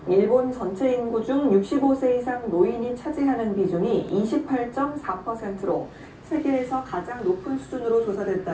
일본 전체 인구 중 65세 이상 노인이 차지하는 비중이 28.4%로 세계에서 가장 높은 수준으로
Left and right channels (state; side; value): identical; both; correlation 1.00